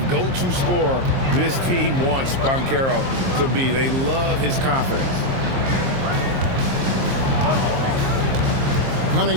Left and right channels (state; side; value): late; left; 23 ms